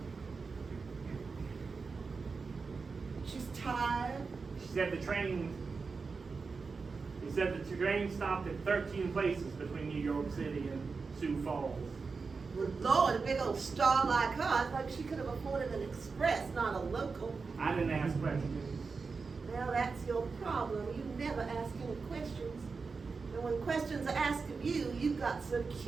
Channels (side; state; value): left; quieter; 4.7 dB